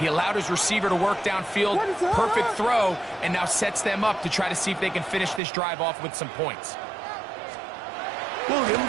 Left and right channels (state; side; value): drops out; left; at 5.4 s